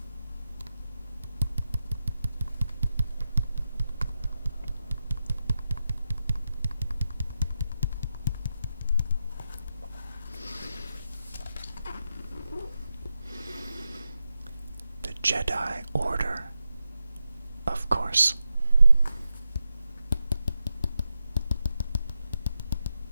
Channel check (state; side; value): inverted; both; correlation -0.89